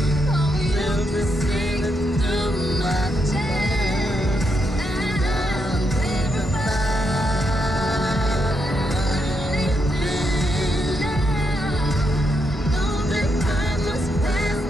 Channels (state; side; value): normal; both; correlation 0.80